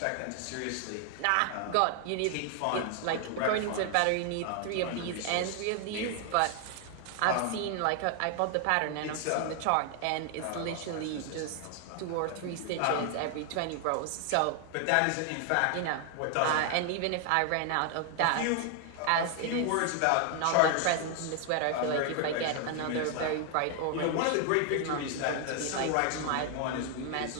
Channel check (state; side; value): different; both; correlation 0.00